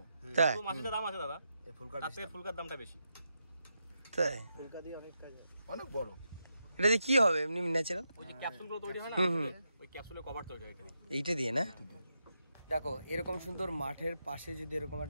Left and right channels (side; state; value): both; inverted; correlation -0.84